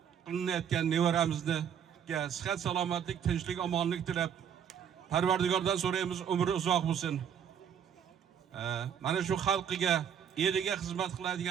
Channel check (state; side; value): quieter; left; 8.4 dB